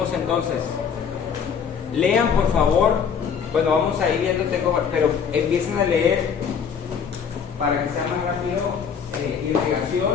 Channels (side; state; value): right; quieter; 6.9 dB